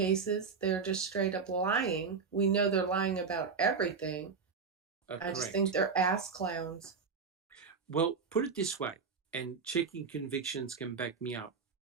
they're just straight up lying. We know they're lying about everything. I just think they're ass clowns. Well, put it this way, and checking convictions can back me up.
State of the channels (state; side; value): quieter; left; 5.3 dB